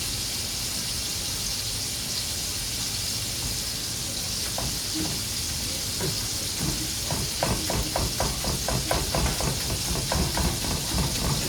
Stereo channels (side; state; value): both; identical; correlation 1.00